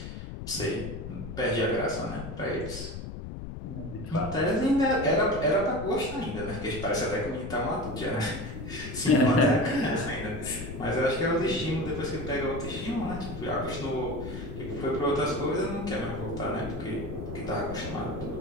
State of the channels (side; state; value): left; noise; rumble, 8 dB below the sound